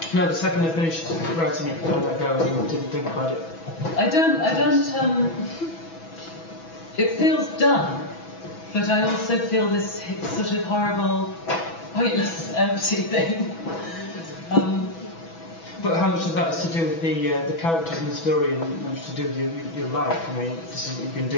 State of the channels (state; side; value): late; right; 6.1 ms